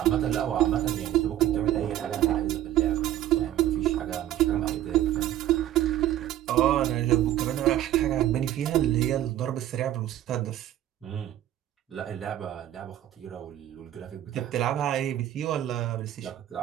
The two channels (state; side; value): quieter; left; 12.6 dB